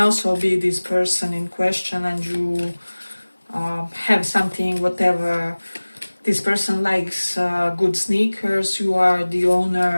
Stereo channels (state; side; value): inverted; both; correlation -1.00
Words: be this person in question, and you have something, whatever. This person likes good sneakers, you are the